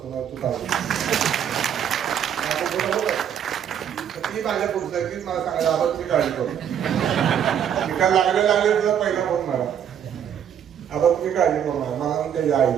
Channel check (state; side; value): quieter; left; 9.0 dB